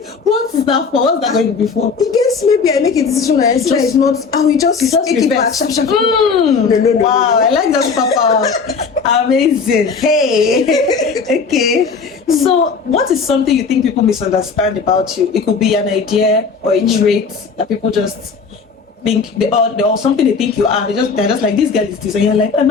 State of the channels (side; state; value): right; quieter; 5.2 dB